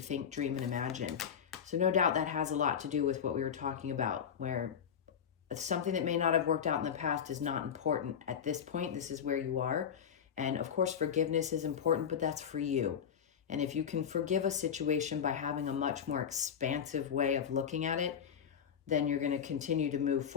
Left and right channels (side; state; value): right; quieter; 7.9 dB